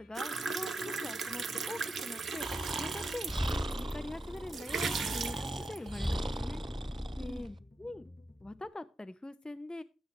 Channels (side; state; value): both; normal; correlation 0.88